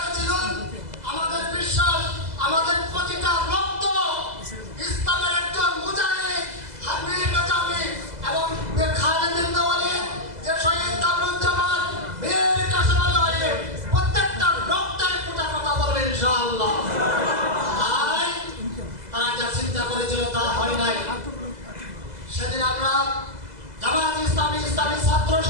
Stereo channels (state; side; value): late; left; 2.0 ms